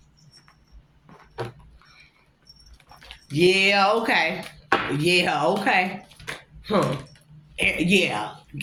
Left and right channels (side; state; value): both; identical; correlation 1.00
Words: Yeah, okay. Yeah.